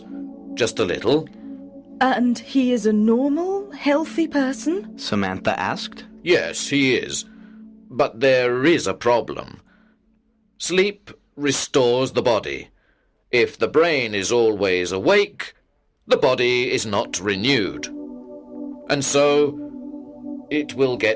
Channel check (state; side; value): identical; both; correlation 1.00